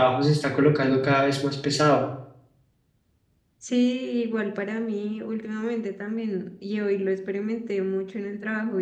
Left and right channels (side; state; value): both; identical; correlation 1.00